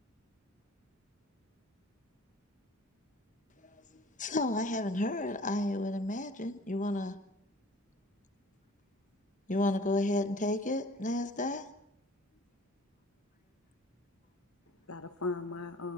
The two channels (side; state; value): both; normal; correlation 0.49